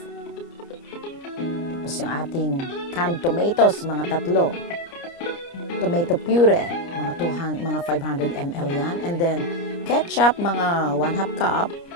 Tapos yung ating canned tomatoes, mga 3. Tomato puree, mga 500 ml yan. And then ketchup, mga 1/2 cup.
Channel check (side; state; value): right; late; 29 ms